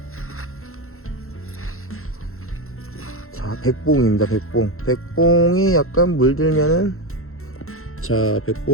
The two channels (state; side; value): late; right; 0.62 ms